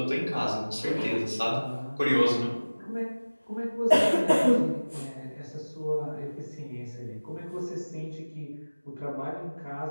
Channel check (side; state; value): both; inverted; correlation -1.00